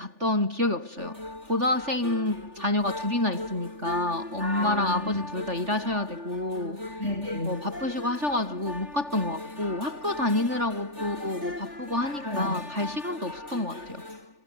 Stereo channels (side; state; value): left; late; 3.4 ms